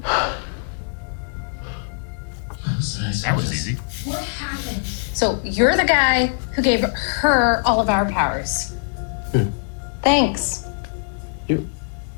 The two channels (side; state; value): right; silent; 60 dB below the other